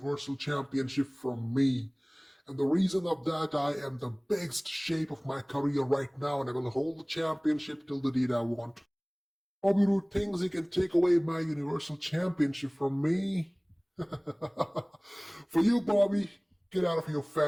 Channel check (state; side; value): identical; both; correlation 1.00